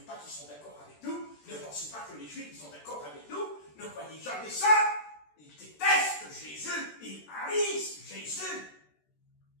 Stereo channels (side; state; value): right; late; 13 ms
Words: pas qu'ils sont d'accord avec nous. Ne pensez pas que les Juifs sont d'accord avec nous. Ne croyez jamais ça. Ils détestent Jésus. Ils haïssent Jésus.